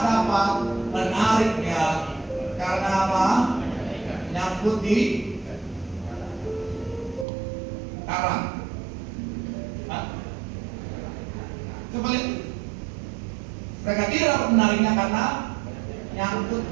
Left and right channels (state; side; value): drops out; left; at 7.2 s